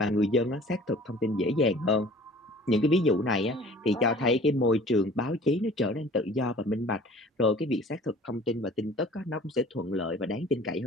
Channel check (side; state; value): both; normal; correlation 0.48